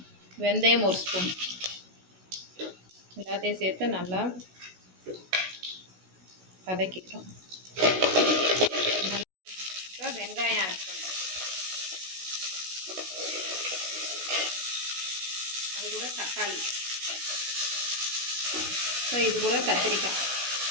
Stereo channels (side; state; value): left; late; 16 ms